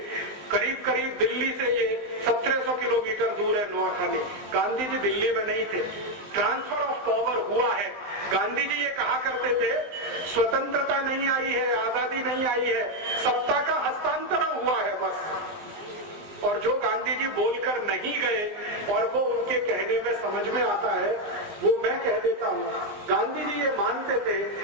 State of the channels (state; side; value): late; left; 19 ms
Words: करीब करीब दिल्ली से ये 1700 150 किलोमीटर दूर है नोआखाली। गांधी जी दिल्ली में नहीं थे। ट्रांसफर ऑफ पावर हुआ है। गांधी जी ये कहा करते थे स्वतंत्रता नहीं आई है, आजादी नहीं आई है, सत्ता का हस्तांतरण हुआ है बस। और जो गांधी जी बोलकर नहीं गए और वो उनके कहने में समझ में आता है, वो मैं कह देता हूं। गांधी जी ये मानते थे